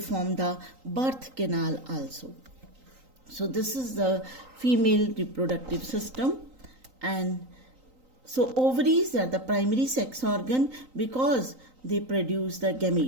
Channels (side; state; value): left; late; 3.9 ms